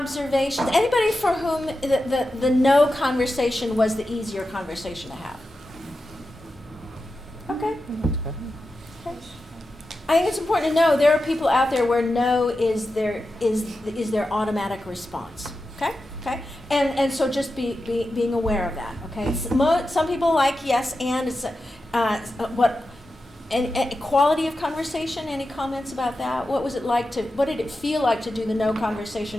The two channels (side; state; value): both; normal; correlation 0.91